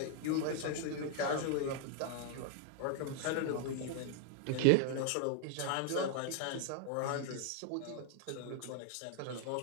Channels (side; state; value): both; different; correlation 0.01